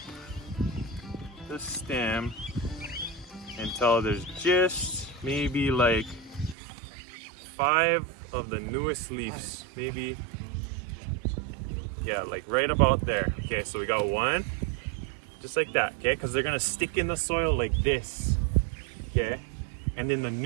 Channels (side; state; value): left; drops out; at 6.6 s